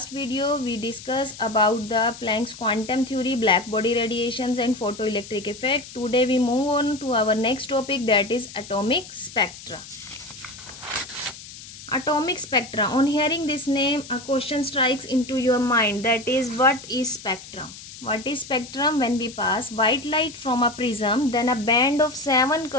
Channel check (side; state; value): left; noise; hiss, 15 dB below the sound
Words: video we discussed about the Planck's quantum theory, black body radiations and photoelectric effect. Today we move on to our next topic, that is atomic spectra. Atomic spectra. On hearing this name, a question strikes into your mind, that is, what is spectrum? What is spectrum? When we pass white light from a prism, then a band of 7